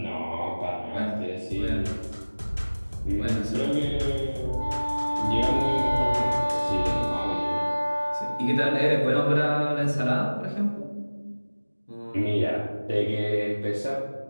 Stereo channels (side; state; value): both; inverted; correlation -1.00